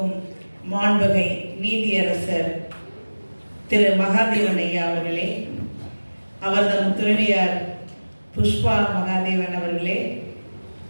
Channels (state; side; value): inverted; both; correlation -1.00